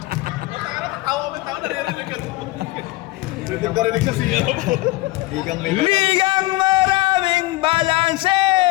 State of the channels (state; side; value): quieter; right; 19.7 dB